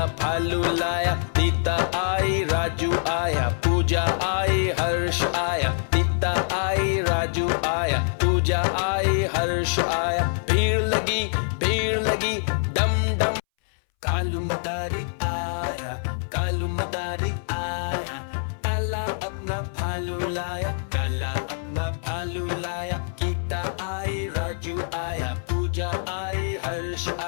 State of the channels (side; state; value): right; silent; 62 dB below the other